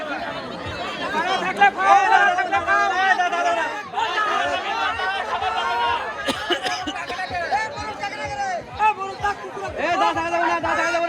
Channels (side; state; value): both; identical; correlation 1.00